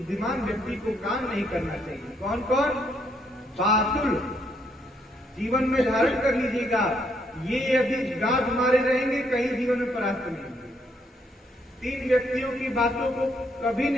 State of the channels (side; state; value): both; normal; correlation 0.73